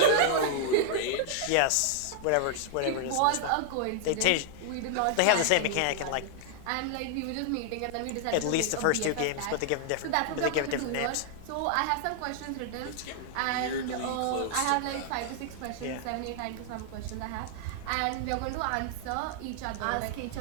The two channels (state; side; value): different; both; correlation 0.00